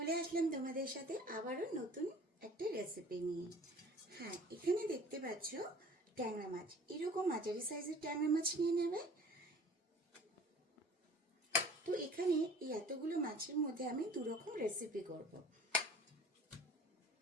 আসলাম তোমাদের সাথে আবারও নতুন একটা রেসিপি নিয়ে। হ্যাঁ, এখানে দেখতে পাচ্ছ ট্যাংরা মাছ। এরকম মাঝারি সাইজের ট্যাংরা মাছ নিয়ে নেবে। তো এখানে এই এতগুলো মাছের মধ্যে আমি দুরকম রেসিপি করব।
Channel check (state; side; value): normal; both; correlation 0.47